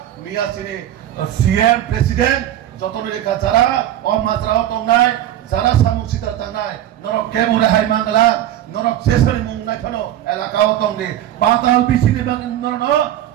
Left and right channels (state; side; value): quieter; left; 12.1 dB